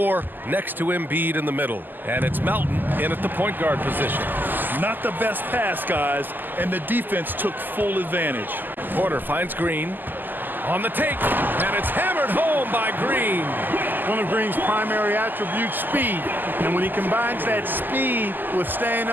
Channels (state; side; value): late; left; 0.089 ms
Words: next to Embiid in the middle. And it's Melton in at the point guard position. Not the best pass, guys, and the defense took full advantage. Porter finds Green on the take, and it's hammered home by Green. One of Green's primary attributes, speed. And when he combines that speed with staying